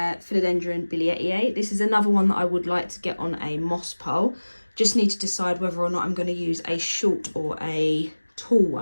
Philodendron WTIE. This is another one that I would like to get on a moss pole. Just need to decide whether or not I'm going to use a short or a tall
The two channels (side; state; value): both; inverted; correlation -1.00